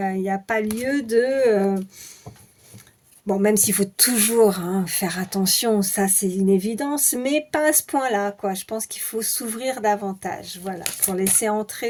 n'y a pas lieu de... Bon, même s'il faut toujours hein, faire attention, ça c'est une évidence, mais pas à ce point-là, quoi. Je pense qu'il faut s'ouvrir davantage, voilà, pour laisser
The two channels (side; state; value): both; identical; correlation 1.00